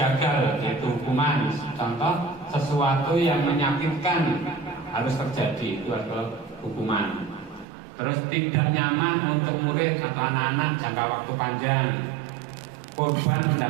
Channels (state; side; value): drops out; left; at 7.7 s